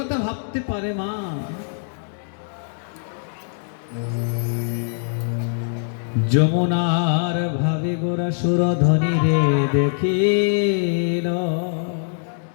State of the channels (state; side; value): silent; right; digital silence